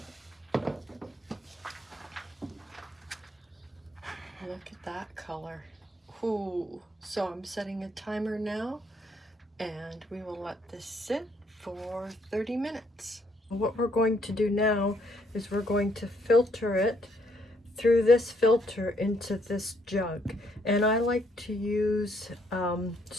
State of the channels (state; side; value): normal; both; correlation 0.70